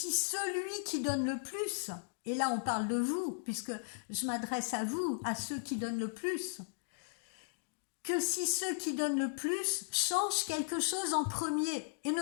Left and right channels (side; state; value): right; silent; digital silence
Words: celui qui donne le plus, et là on parle de vous, puisque je m'adresse à vous, à ceux qui donnent le plus, que si ceux qui donnent le plus changent quelque chose en premier et